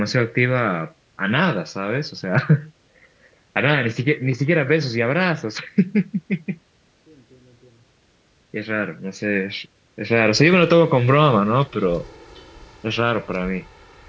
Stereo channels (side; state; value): both; identical; correlation 1.00